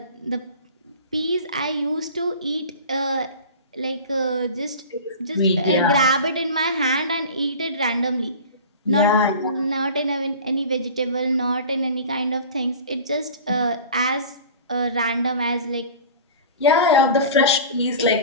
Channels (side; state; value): both; inverted; correlation -0.37